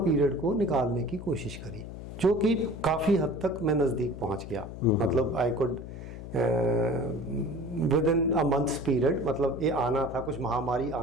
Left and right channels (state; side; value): noise; left; hum, 11 dB below the sound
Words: को निकालने की कोशिश करी, जो कि काफ़ी हद तक मैं नज़दीक पहुंच गया। मतलब I could with in a months period, मतलब ये आना था, कुछ महामारी